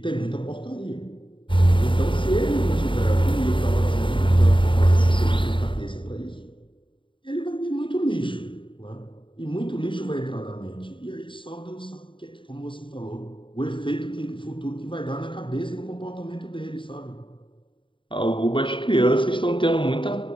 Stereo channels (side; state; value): right; late; 0.24 ms